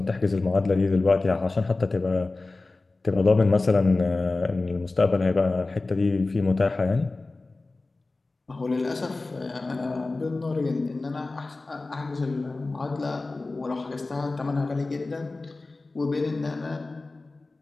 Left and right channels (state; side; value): quieter; right; 3.3 dB